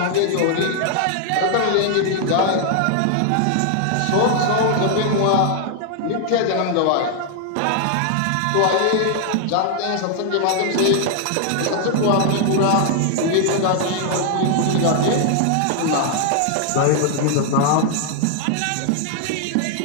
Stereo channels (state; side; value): different; both; correlation 0.00